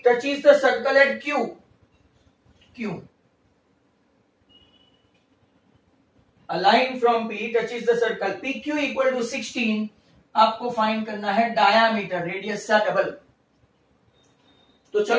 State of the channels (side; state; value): both; identical; correlation 1.00